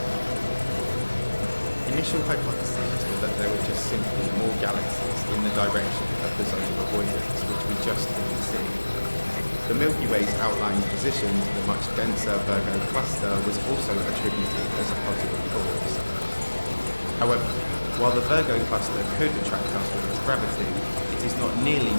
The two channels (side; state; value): both; inverted; correlation -1.00